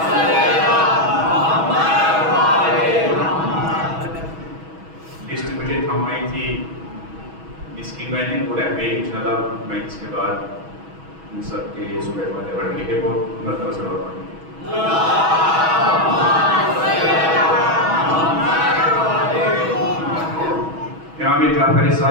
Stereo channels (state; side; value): late; left; 6.2 ms